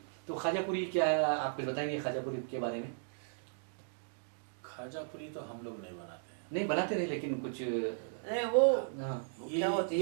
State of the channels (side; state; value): left; silent; digital silence